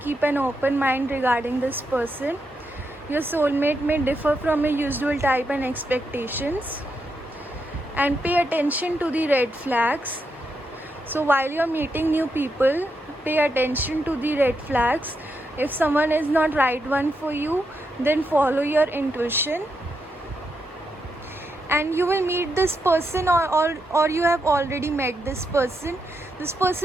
an open mind regarding this person. Your soulmate may differ from your usual type and expectations. And pay attention to the red flags. So while you're meeting new people, pay attention to the red flags. If someone is not right one for you, then follow your intuition. And you will meet this person, or you have already met this person. This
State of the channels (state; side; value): normal; both; correlation 0.83